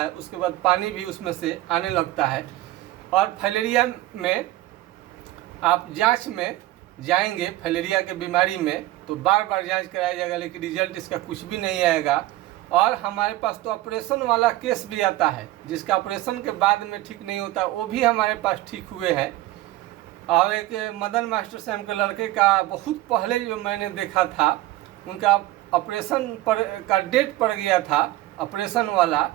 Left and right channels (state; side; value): quieter; left; 16.3 dB